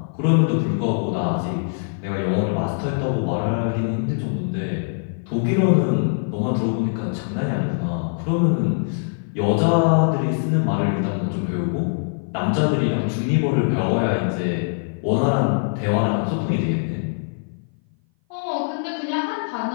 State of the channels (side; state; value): right; silent; 58 dB below the other